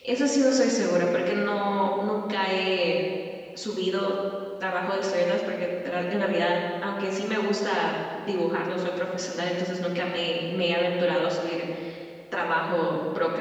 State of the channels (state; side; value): identical; both; correlation 1.00